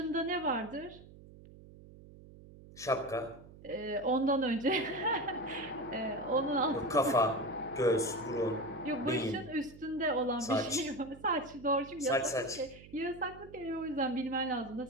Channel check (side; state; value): right; noise; hum, 19 dB below the sound